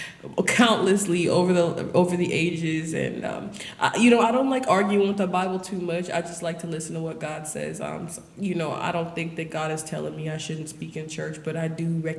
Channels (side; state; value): both; identical; correlation 1.00